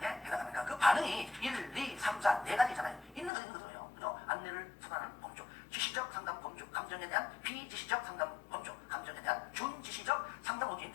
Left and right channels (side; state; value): right; drops out; at 3.3 s